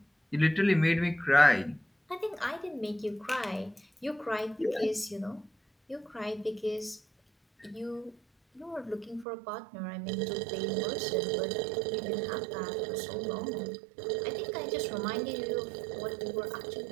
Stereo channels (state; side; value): drops out; left; at 9.2 s